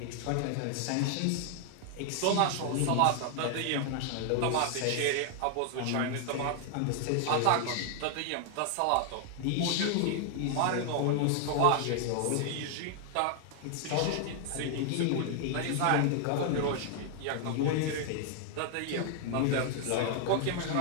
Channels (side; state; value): both; different; correlation 0.00